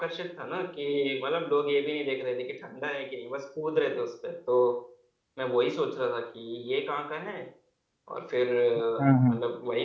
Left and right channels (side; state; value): both; identical; correlation 1.00